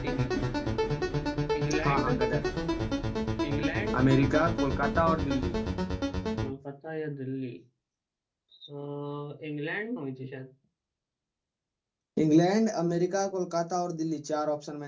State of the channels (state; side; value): identical; both; correlation 1.00